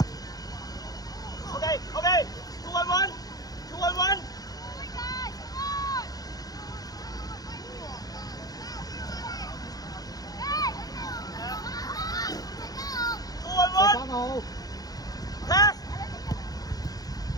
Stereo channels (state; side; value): late; right; 0.18 ms